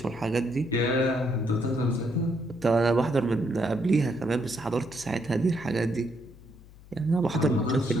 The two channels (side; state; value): left; noise; hum, 21 dB below the sound